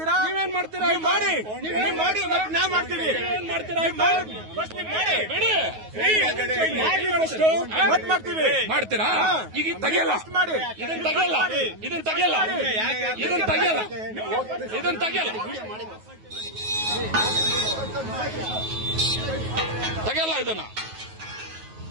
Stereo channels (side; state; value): left; late; 9.4 ms